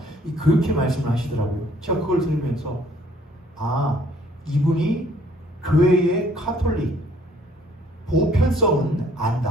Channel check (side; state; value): both; normal; correlation 0.60